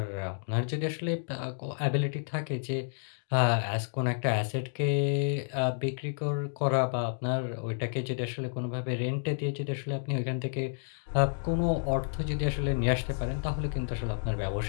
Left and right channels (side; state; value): right; silent; digital silence